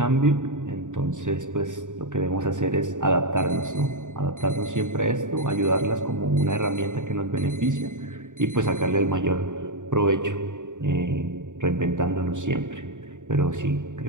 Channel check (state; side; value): late; left; 0.86 ms